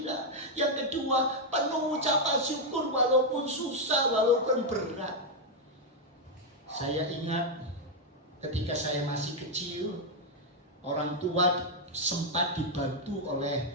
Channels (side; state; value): both; normal; correlation 0.00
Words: Yang kedua, penuh ucapan syukur walaupun susah, walaupun berat. Saya ingat ketika saya masih kecil, orang tua sempat dibantu